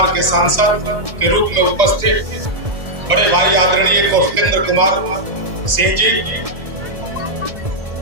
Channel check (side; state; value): left; late; 1.9 ms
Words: के सांसद के रूप में उपस्थित बड़े भाई आदरणीय कौशलेंद्र कुमार सिंह जी,